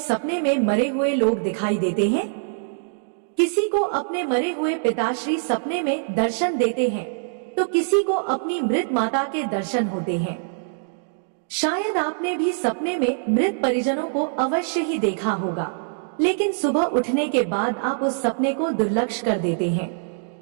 में मरे हुए लोग दिखाई देते हैं? किसी को अपने मरे हुए पिताश्री सपने में दर्शन देते हैं तो किसी को अपनी मृत माता के दर्शन होते हैं। शायद आपने भी सपने में मृत परिजनों को अवश्य ही देखा होगा, लेकिन सुबह उठने के बाद आप उस सपने को दुर्लक्ष्य कर देते हैं।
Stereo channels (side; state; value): left; silent; digital silence